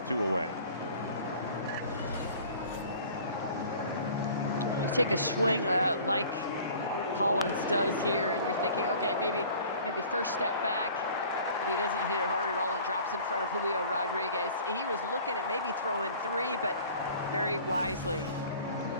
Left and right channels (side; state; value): both; inverted; correlation -0.47